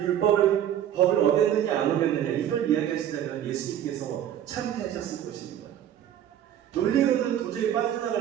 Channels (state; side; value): quieter; left; 10.7 dB